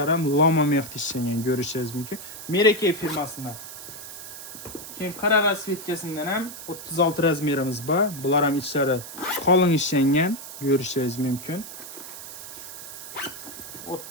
ham lama mexti ishlangan, ko'rishingiz mumkin. Meraki firmasidan. Keyin qora rasvetkasidan ham 36 razmerimiz bor. Bular ham ishlari qalin ishlangan, ko'rishingiz mumkin.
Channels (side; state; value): right; noise; hiss, 12 dB below the sound